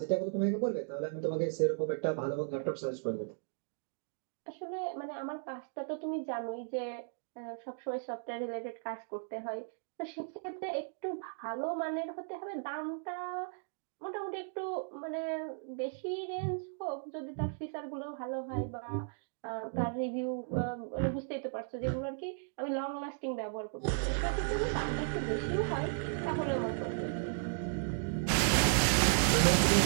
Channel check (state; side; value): silent; left; digital silence